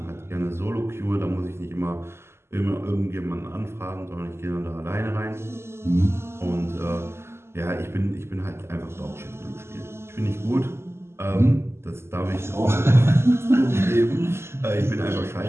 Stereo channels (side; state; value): left; late; 0.12 ms